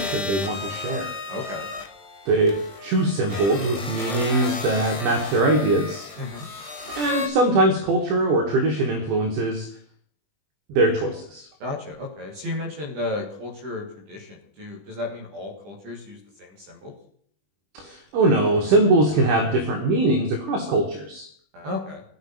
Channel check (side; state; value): left; late; 20 ms